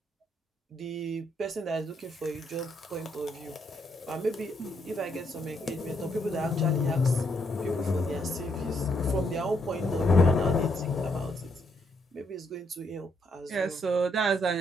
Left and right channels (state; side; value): normal; both; correlation 0.75